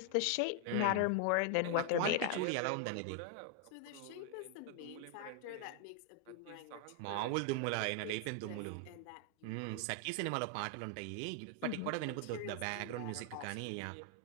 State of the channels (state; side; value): different; both; correlation 0.00